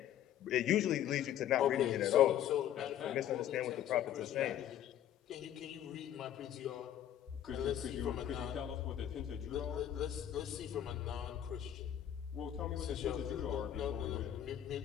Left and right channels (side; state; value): right; quieter; 10.9 dB